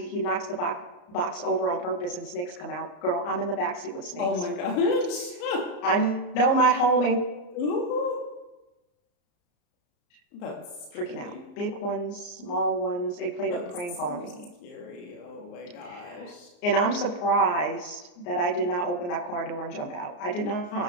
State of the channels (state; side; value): late; right; 34 ms